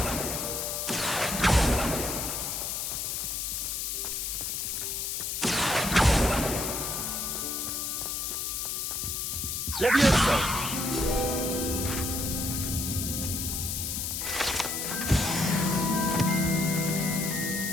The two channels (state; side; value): noise; left; hiss, 2 dB below the sound